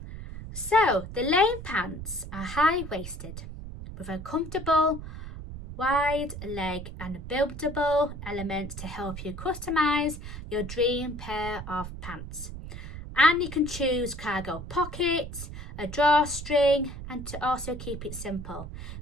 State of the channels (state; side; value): noise; right; rumble, 10 dB below the sound